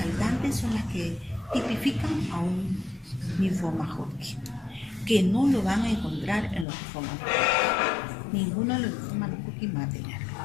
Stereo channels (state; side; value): drops out; right; at 6.7 s